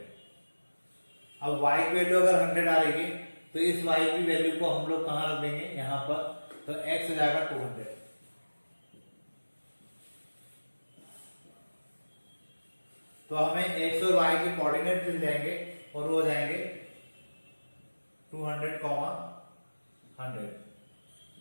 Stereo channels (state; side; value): inverted; both; correlation -1.00